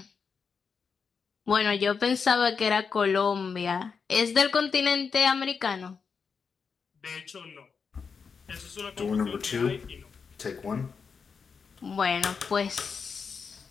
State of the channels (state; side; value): quieter; right; 5.7 dB